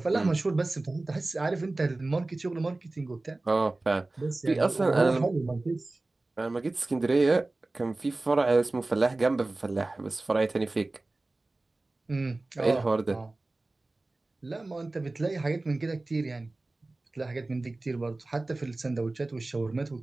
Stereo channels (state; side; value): quieter; left; 3.0 dB